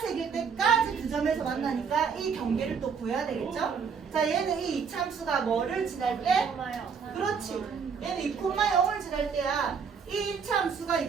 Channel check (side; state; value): left; quieter; 6.2 dB